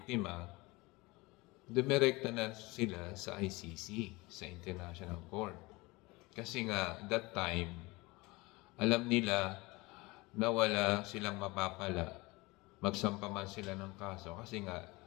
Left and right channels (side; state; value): right; quieter; 23.1 dB